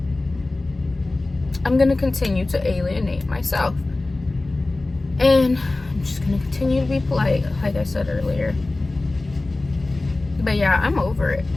I'm gonna continue to alienate myself, and I'm just gonna continue to be polite, like I said earlier. But yeah, I'm over it.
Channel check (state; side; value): quieter; right; 3.0 dB